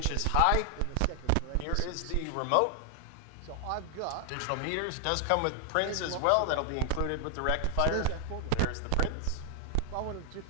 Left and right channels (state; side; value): different; both; correlation 0.00